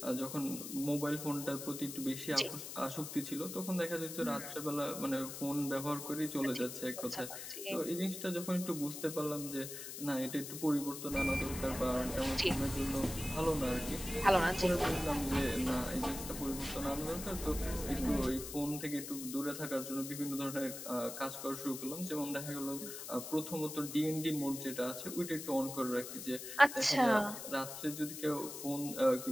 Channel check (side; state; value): left; noise; hiss, 9 dB below the sound